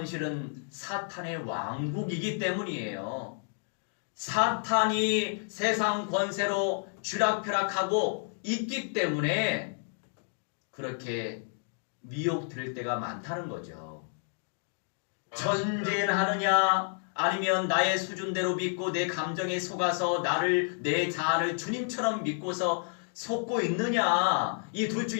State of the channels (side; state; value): right; silent; 58 dB below the other